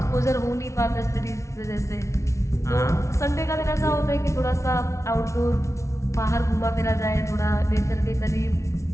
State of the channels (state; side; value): late; right; 0.14 ms